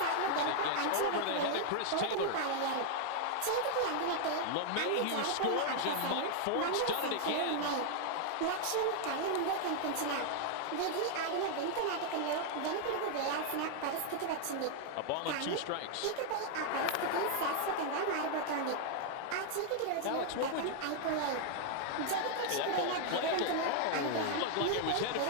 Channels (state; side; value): different; both; correlation 0.00